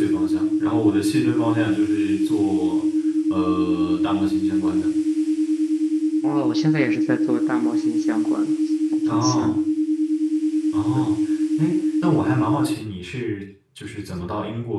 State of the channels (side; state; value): both; identical; correlation 1.00